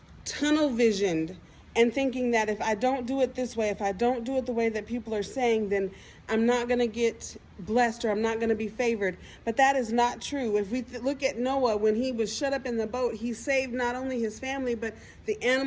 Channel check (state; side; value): identical; both; correlation 1.00